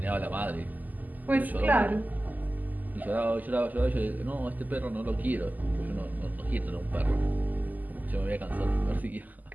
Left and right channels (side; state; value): left; late; 0.082 ms